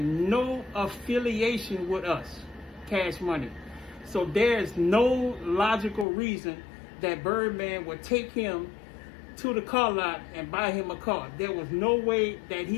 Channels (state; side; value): drops out; right; at 6.1 s